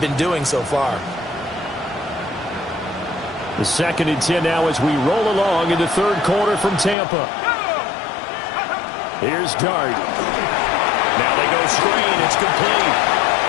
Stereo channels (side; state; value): right; drops out; at 7.0 s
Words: been doing so far. The 2nd and 10 now as we roll along in the third quarter from Tampa. Here's Dart. Now they go screen. It's complete.